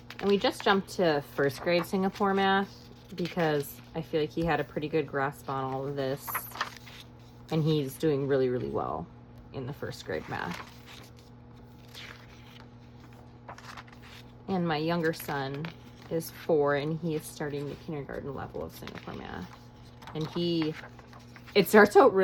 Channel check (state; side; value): identical; both; correlation 1.00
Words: And we just jumped to first grade Singapore math because I feel like he had a pretty good grasp on all of this. And he's doing really, really well in the first grade math. And my younger son is 4 and he is starting the kindergarten level of Singapore math. And it starts out